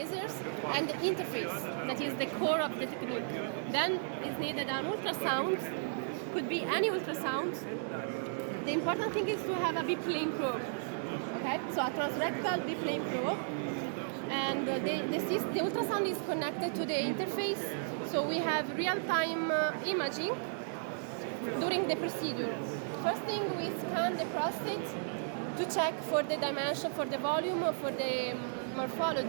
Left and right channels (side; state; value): left; silent; digital silence